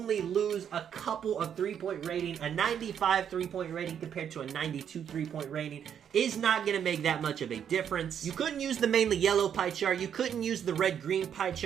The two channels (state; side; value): quieter; left; 8.6 dB